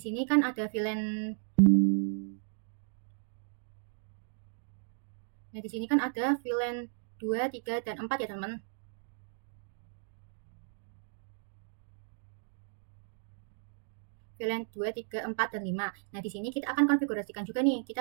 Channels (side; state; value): left; silent; digital silence